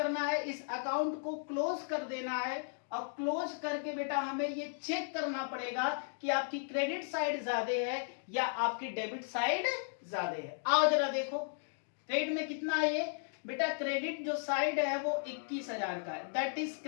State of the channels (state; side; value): silent; right; digital silence